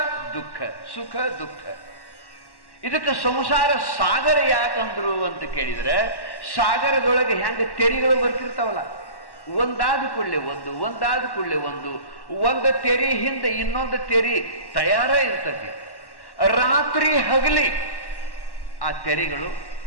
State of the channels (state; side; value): late; right; 1.1 ms